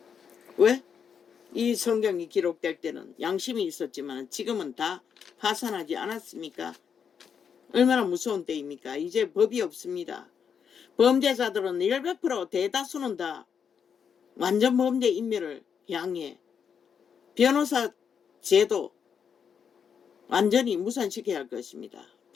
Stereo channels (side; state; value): right; quieter; 7.1 dB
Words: 왜? 이 성경이 기록될 때는 양심이 있었지만 지금은 다 파산하지 않았습니까? 얼마나 무서운 때입니까? 이제 법이 없습니다. 범죄자들은 100% 대다수는 다 완전 범죄 인멸을 향해 변호사 제도 완전히 무산시켜야 할 것입니다.